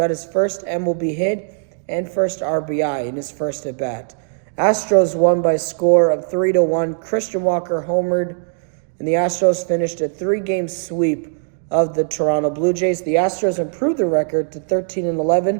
his first MLB hit and first RBI in his first at-bat. Astros won by a score of 3-1. Christian Walker homered, and the Astros finished a 3-game sweep of the Toronto Blue Jays. The Astros improved their record to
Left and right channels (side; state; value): left; silent; digital silence